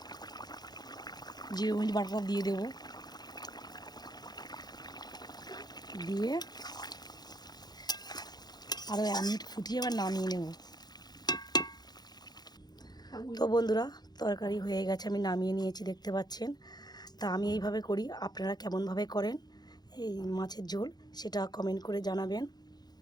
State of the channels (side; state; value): right; late; 0.20 ms